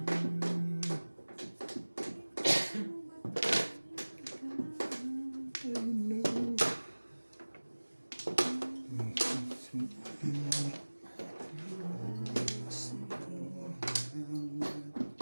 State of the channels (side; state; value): both; inverted; correlation -1.00